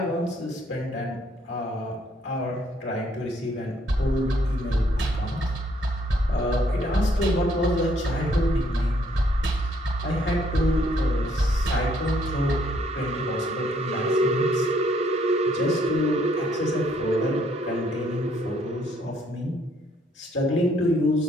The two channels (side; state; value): both; normal; correlation 0.67